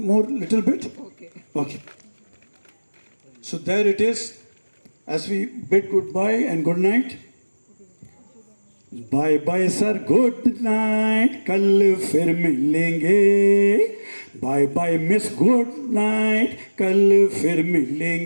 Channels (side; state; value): both; inverted; correlation -1.00